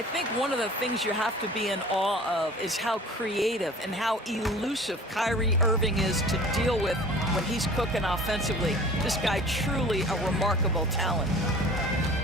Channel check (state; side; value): normal; both; correlation 0.44